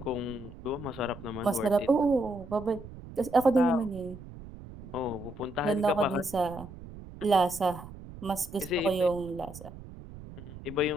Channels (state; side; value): noise; right; rumble, 15 dB below the sound